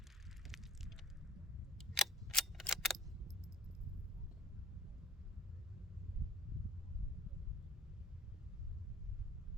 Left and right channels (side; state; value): both; normal; correlation 0.52